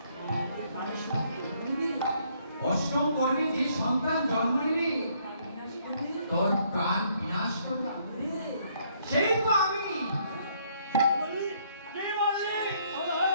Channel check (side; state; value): both; inverted; correlation -0.68